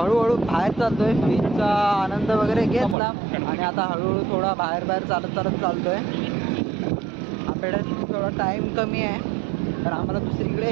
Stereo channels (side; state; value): left; drops out; at 3.0 s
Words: बाहेर चालतोय. बीचचा आनंद वगैरे घेतला आणि आता हळूहळू थोडा बाहेर चालत चालतोय. आपल्याकडे थोडा टाईम कमी आहे तर आम्हाला दुसरीकडे